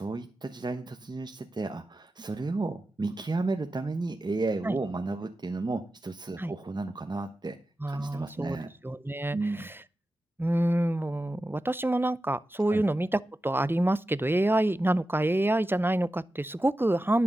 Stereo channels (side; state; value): both; normal; correlation 0.92